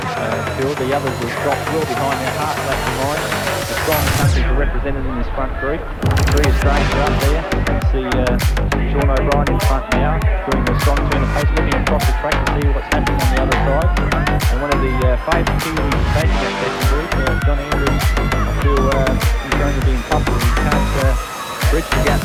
Phil. The others have dropped well behind, they're half lap behind. The strong countries are represented in this front group. 3 Australians are up there. You see Sean O'Brien in front now, doing the strong turn of pace, looking across the track to see what's happening on the other side. And one of the favourite Kiwis taking that second group, John Andrews, I feel he's going to be in trouble. He can't bridge the gap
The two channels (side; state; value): both; identical; correlation 1.00